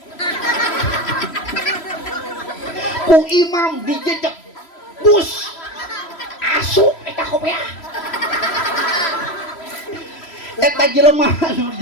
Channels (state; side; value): late; right; 3.1 ms